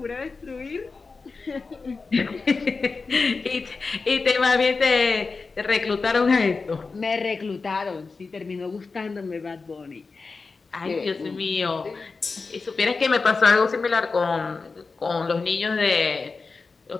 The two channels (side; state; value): right; quieter; 4.3 dB